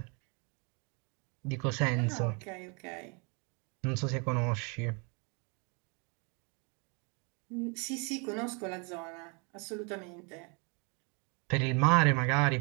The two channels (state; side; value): quieter; left; 33.4 dB